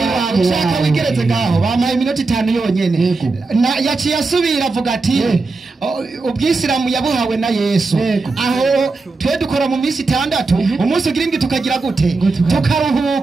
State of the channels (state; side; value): quieter; left; 3.8 dB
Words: wawe ushaka wigeretse ngaho bamaye iminota 5 yonyene yaciye asubira avuga ati ubwisilamu yabuhawe na Yesu aho twe dukora mu minsi 6 umunsi ugira indwi tukagira gute